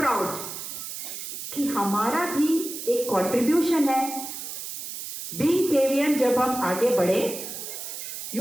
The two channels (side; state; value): right; noise; hiss, 8 dB below the sound